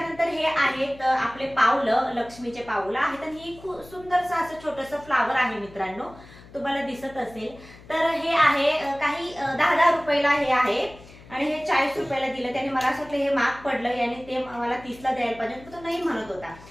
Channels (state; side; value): noise; left; hum, 21 dB below the sound